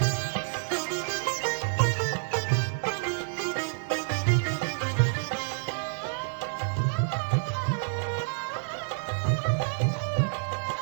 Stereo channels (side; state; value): left; silent; digital silence